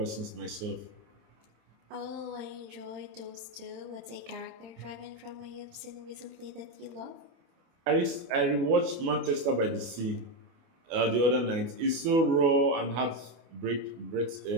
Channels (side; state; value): left; late; 24 ms